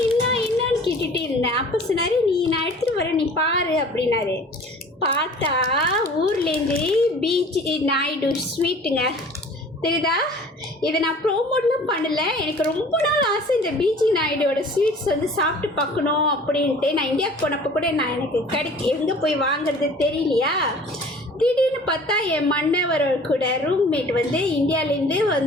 கேட்டுகிட்டே இருந்தேன். அப்போ சொன்னார், நான் எடுத்துகிட்டு வரேன் நீ பாரு அப்படின்னாரு. பார்த்தா ஊர்லேருந்து பீச் நாயுடு ஸ்வீட்டுங்க தெரியுதா. இதை நான் ப்ரோமோட்லாம் பண்ணலை. எனக்கு ரொம்ப நாள் ஆசை இந்த பிஜி நாயுடோட ஸ்வீட்ஸ் வந்து சாப்பிட்டு பார்க்கணும் அப்படின்ட்டு. நான் இந்தியாவுக்கு போனப்போ கூட நான் எனக்கு எங்கே போய் வாங்குறது தெரியலையா. திடீர்னு பார்த்தா என் மன்னவர் கூட ரூம்மேட் வந்து இந்தியாவிலேருந்து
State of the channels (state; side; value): normal; both; correlation 0.47